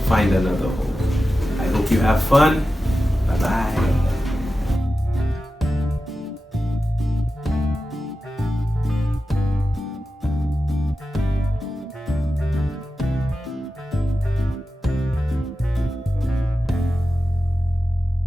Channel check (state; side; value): normal; both; correlation 0.92